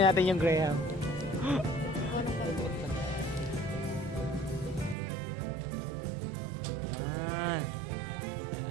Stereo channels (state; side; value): drops out; left; at 5.0 s